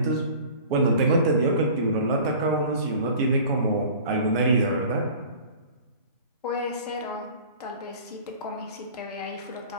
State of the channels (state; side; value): inverted; both; correlation -0.44